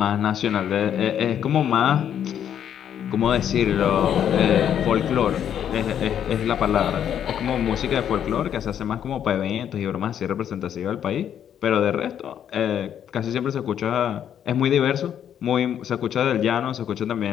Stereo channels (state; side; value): quieter; right; 9.4 dB